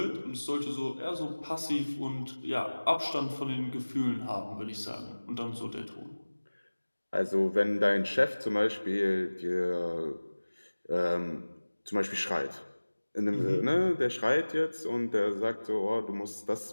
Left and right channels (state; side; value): inverted; both; correlation -1.00